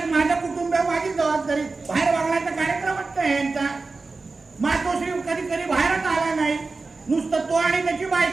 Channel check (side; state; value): left; quieter; 3.8 dB